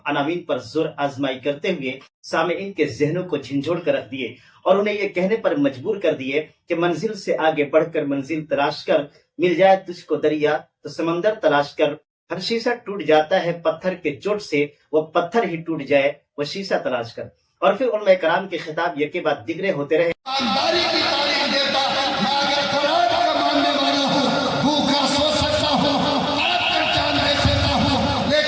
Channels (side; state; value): both; identical; correlation 1.00